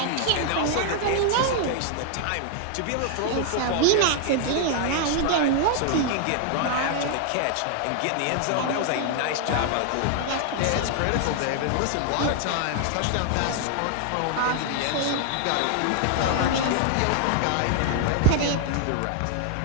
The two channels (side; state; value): both; different; correlation 0.00